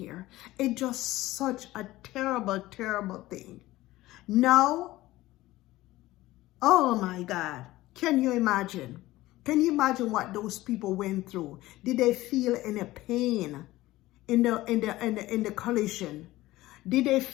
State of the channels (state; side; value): quieter; right; 17.4 dB